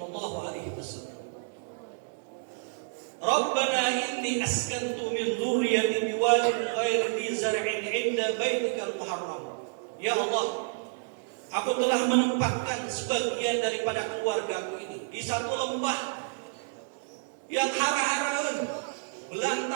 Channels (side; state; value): left; silent; 58 dB below the other